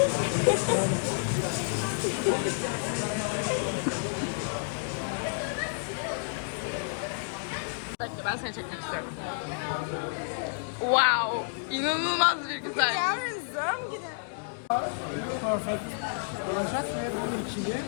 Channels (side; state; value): right; silent; digital silence